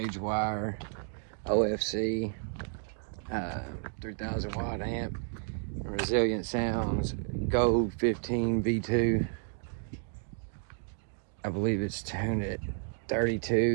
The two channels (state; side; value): silent; left; 57 dB below the other